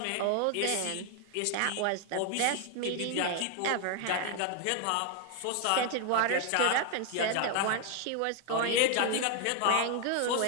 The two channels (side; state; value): both; different; correlation 0.01